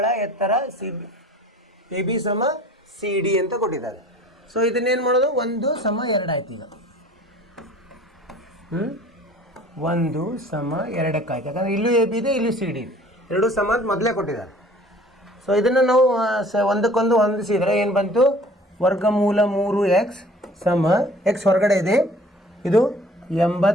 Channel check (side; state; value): both; normal; correlation 0.49